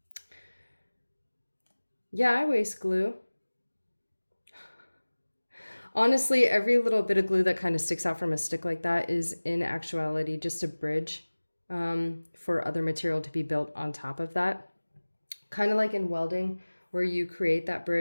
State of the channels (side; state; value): both; inverted; correlation -1.00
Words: Yeah, I waste glue. Honestly, every little bit of glue that kind of sticks out from a stick like that is in actuality just a bridge for other material to be built on top of that. Kind of like in welding, where you create that